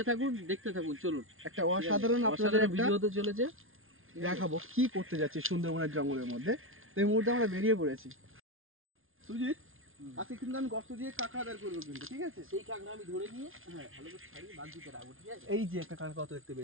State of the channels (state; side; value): late; left; 0.60 ms